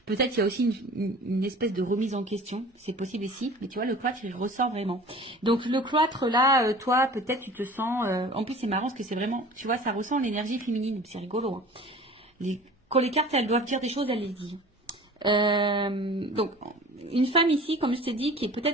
Peut-être il y a aussi une espèce de remise en question. C'est possible ici. Mais tu vois, le cloître, il ressort vraiment. Donc, le cloître là, toi, peut-être tu te sens... En plus, c'est marrant parce que c'est vraiment... Tu vois, ça ressent l'énergie féminine. C'est rigolo. Hein. Quand les cartes, elles doivent dire des choses, elles les disent. Donc, une femme ici, comme je t'ai dit, qui est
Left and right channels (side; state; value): both; normal; correlation 0.43